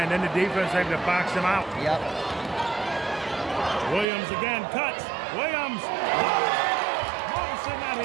and then the defense able to box him out. Yep. Williams again, cuts. Williams. Morrison out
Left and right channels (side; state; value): left; drops out; at 4.0 s